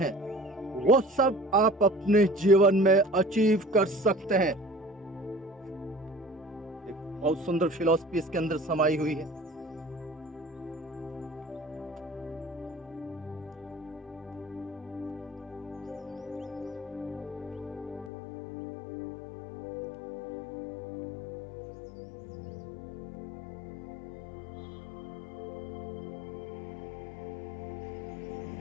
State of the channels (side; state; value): right; drops out; at 18.1 s